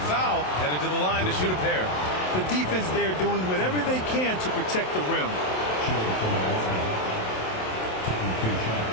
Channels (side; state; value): right; late; 27 ms